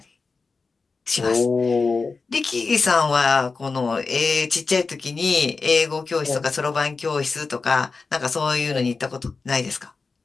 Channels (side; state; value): right; quieter; 4.4 dB